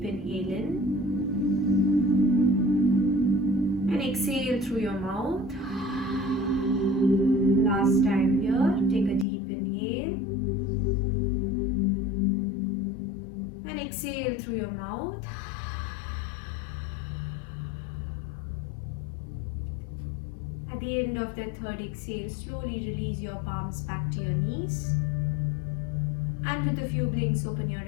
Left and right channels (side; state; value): right; drops out; at 9.2 s